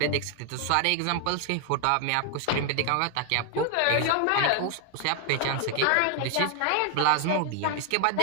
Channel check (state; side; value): different; both; correlation 0.00